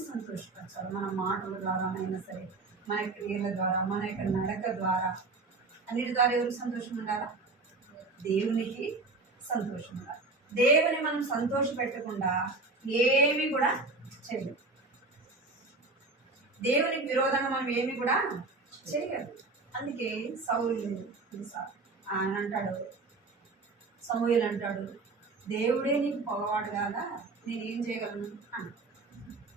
సంతోషపరచాలి. మన మాటల ద్వారానైనా సరే, మన క్రియల ద్వారా, మన యొక్క నడక ద్వారా, అన్నిటి ద్వారా ఎవరికి సంతోషం ఉండాలా? దేవునికి సంతోషం ఉండాలి. దేవుని మనం సంతోష పెట్టకుండా ఏమి కూడా చేయలేము. దేవునికి విరోధంగా మనం ఏమి కూడా చేయలేదు. అందుకే సౌలు ఆయన అంటాడు, సమూయేలు అంటాడు, దేవుడే నీకు పొగవాడు కాదా, నేనేం చేయగలను అని.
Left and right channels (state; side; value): quieter; left; 3.6 dB